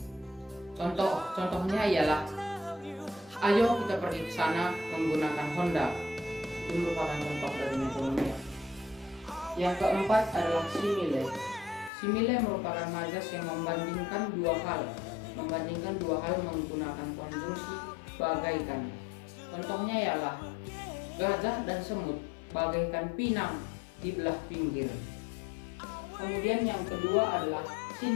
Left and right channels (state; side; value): drops out; right; at 11.9 s